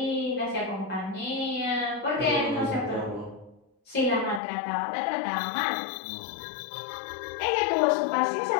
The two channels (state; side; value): drops out; right; at 4.4 s